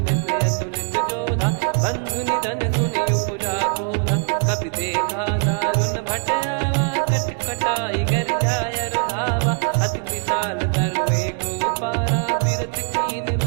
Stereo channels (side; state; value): left; quieter; 39.2 dB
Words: अतुलित जोधा, बंधु निधन सुनि उपजा क्रोधा। कपि देखा दारुण भट आवा, कट कटाई घर जाय रुधावा। अति विशाल तरुए को पारा, बिरत कीन